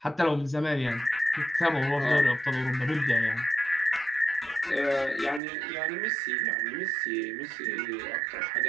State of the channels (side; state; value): left; drops out; at 5.4 s